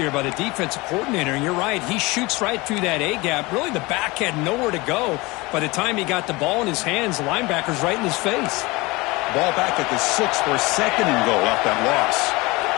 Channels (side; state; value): right; quieter; 23.3 dB